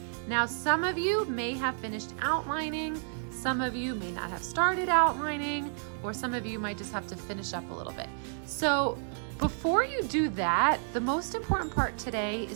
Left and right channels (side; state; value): left; silent; digital silence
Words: Now, some of you may have finished outlining, some of you may not have started outlining, or some of you might just have to finish up a little bit. So before you do that, the most important part today